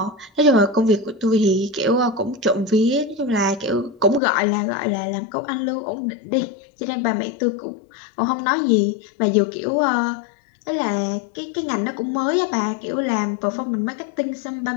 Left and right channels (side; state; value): right; drops out; at 4.2 s